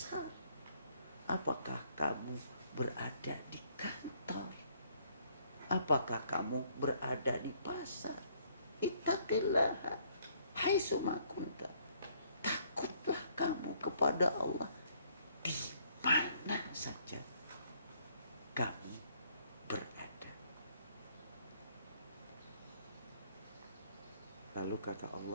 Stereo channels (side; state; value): both; inverted; correlation -0.65